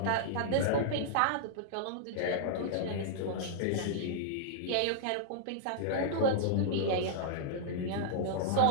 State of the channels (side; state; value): both; different; correlation -0.01